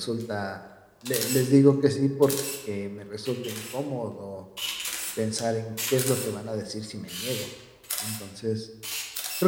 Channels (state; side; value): identical; both; correlation 1.00